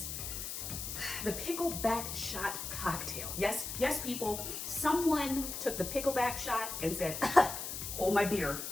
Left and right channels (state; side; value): noise; left; hiss, 6 dB below the sound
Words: the Pickleback shot cocktail. Yes, people, someone took the Pickleback shot and said, hold my beer,